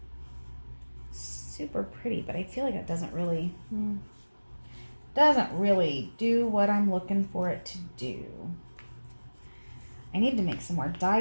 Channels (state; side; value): inverted; both; correlation -1.00